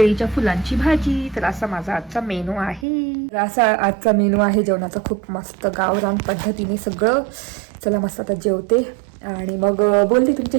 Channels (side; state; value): left; drops out; at 2.9 s